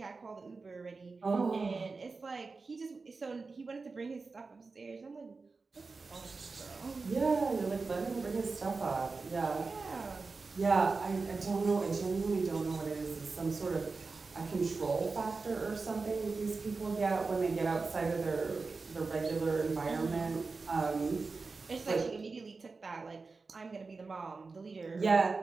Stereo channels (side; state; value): left; quieter; 4.1 dB